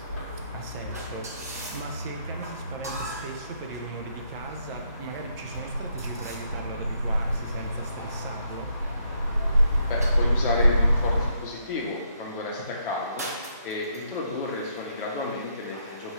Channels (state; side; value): inverted; both; correlation -0.74